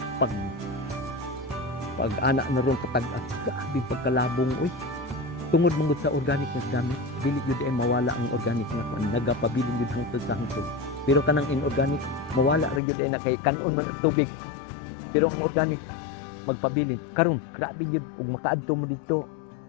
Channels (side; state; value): right; drops out; at 12.8 s